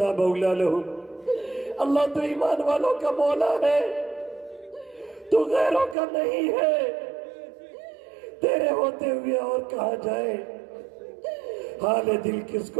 مولا لهم۔ اللہ تو ایمان والوں کا مولا ہے، تو غیروں کا نہیں ہے۔ تیرے ہوتے ہوئے اور کہاں جائے، حال دل کس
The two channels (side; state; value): left; drops out; at 6.0 s